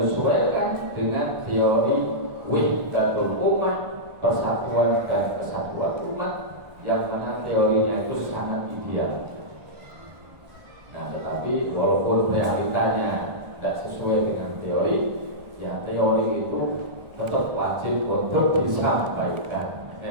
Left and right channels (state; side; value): late; left; 1.3 ms